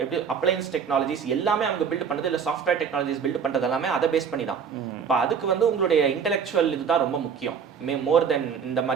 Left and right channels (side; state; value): left; quieter; 6.8 dB